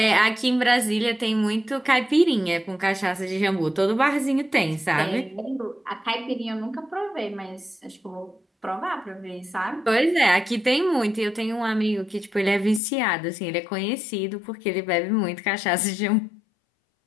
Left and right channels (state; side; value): drops out; right; at 12.8 s